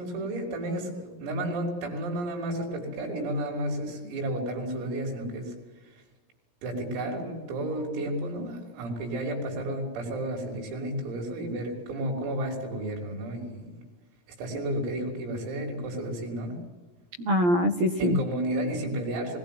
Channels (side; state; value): left; late; 17 ms